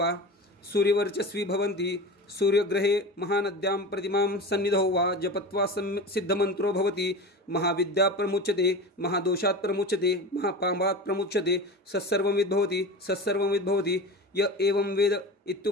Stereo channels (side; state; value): both; normal; correlation 0.30